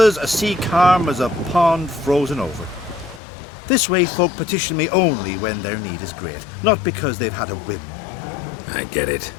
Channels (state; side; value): drops out; right; at 3.2 s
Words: a sea calm as a pond frozen over. This way folk petition me only when their need is great, not because they've had a whim. I get it.